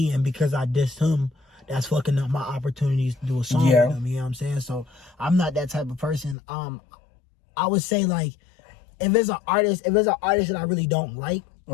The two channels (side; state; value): right; drops out; at 6.4 s